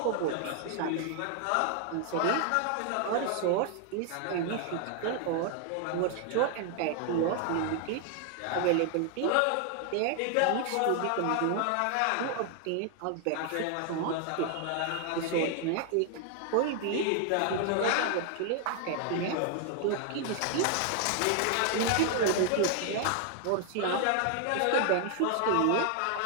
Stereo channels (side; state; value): both; different; correlation 0.00